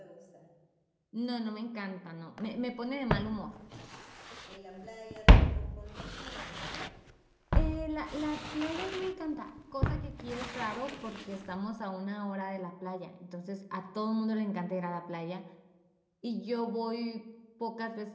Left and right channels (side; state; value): both; identical; correlation 1.00